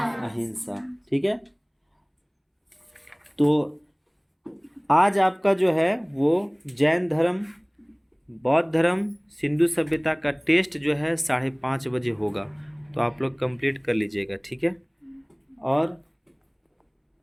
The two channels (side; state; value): both; identical; correlation 1.00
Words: अहिंसा। ठीक है। तो आज आपका जो है वो जैन धर्म, बौद्ध धर्म, सिंधु सभ्यता का टेस्ट जो है 5:30 बजे होगा, तो आप लोग कंप्लीट कर लीजिएगा। ठीक है। और